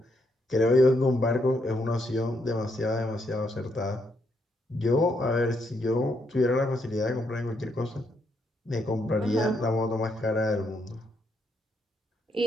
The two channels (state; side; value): normal; both; correlation 0.77